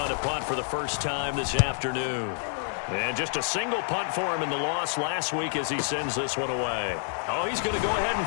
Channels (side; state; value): right; silent; 59 dB below the other